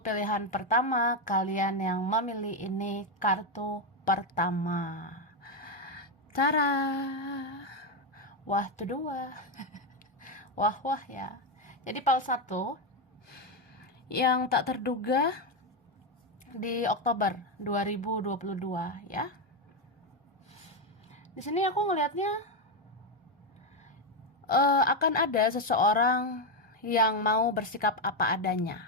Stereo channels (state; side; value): normal; both; correlation 0.07